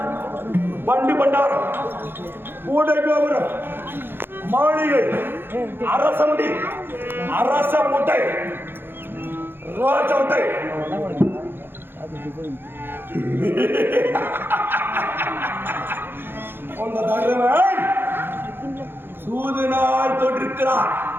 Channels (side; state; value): left; late; 0.10 ms